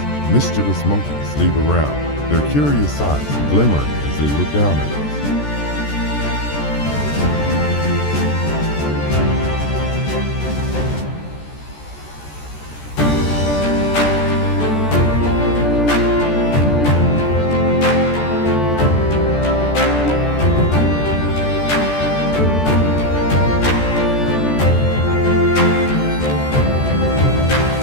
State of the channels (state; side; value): late; right; 14 ms